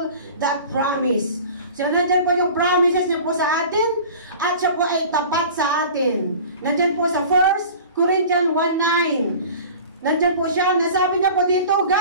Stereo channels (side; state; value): both; inverted; correlation -0.41